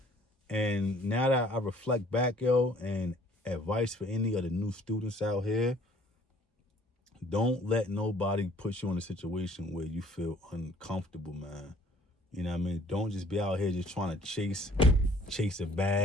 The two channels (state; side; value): normal; both; correlation 0.57